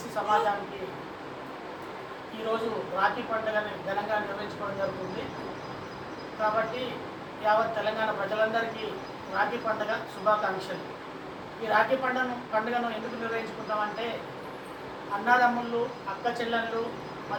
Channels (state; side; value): identical; both; correlation 1.00